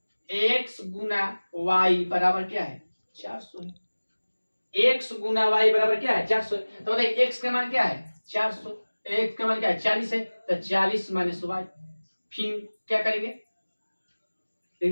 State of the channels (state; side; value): inverted; both; correlation -1.00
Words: x गुना y बराबर क्या है 400 है। x गुना y बराबर क्या है 400। तो बताइए x का मान क्या है 400, x का मान क्या है 40 है, तो 40 माइनस y। फिर क्या करेंगे